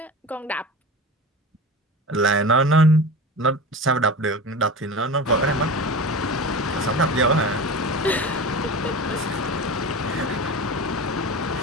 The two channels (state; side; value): normal; both; correlation 0.31